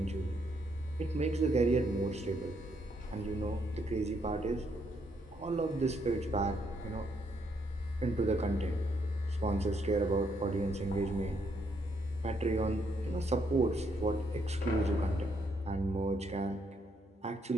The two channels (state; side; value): normal; both; correlation 0.74